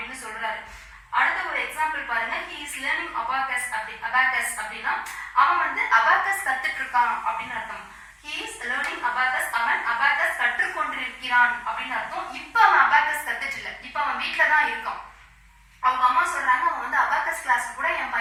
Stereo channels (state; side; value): identical; both; correlation 1.00